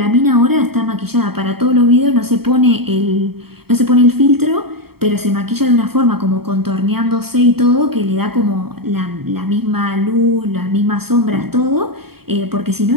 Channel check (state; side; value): late; left; 0.96 ms